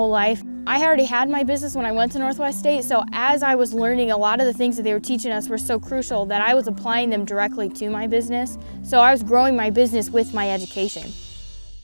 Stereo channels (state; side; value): inverted; both; correlation -1.00